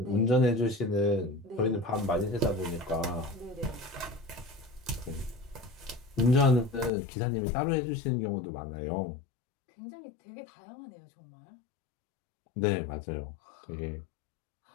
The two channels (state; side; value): drops out; right; at 6.9 s